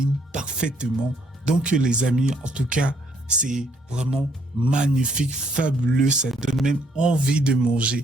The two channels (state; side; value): normal; both; correlation 0.68